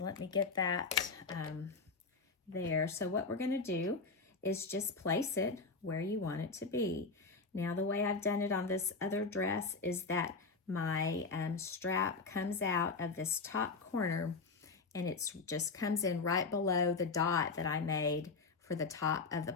let me get that there. So what we're going to do is just place it where you want it to be. Now the way I've done it on this other dress is that my strap comes out of this top corner, and it's just comes in right below the dot that I made for the top of the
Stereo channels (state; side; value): quieter; right; 4.2 dB